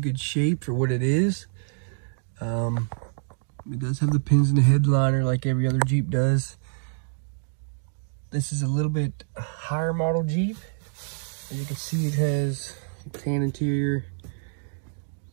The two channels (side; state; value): left; silent; digital silence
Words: shape for what it is. It does have the pins in the headliner like every other Jeep does. This is a little bit higher model Jeep. As you can see, it has a tan interior,